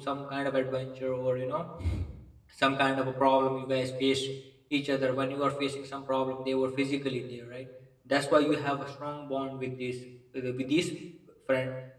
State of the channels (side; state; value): both; identical; correlation 1.00